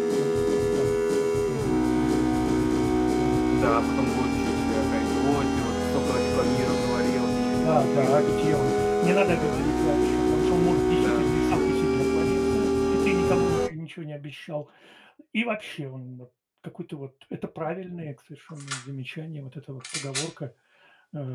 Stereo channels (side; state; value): both; identical; correlation 1.00